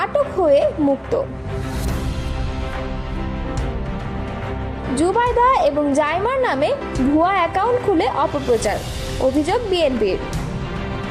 আটক হয়ে মুক্ত। জুবাইদা এবং জাইমার নামে ভুয়া অ্যাকাউন্ট খুলে অপপ্রচার, অভিযোগ বিএনপির।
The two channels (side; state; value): both; identical; correlation 1.00